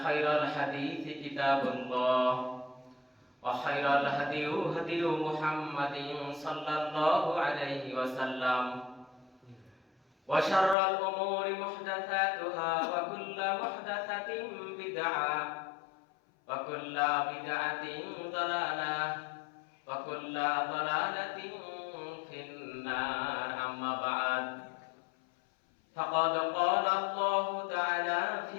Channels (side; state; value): right; drops out; at 10.8 s